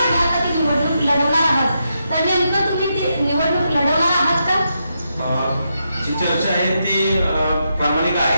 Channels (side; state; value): both; inverted; correlation -0.83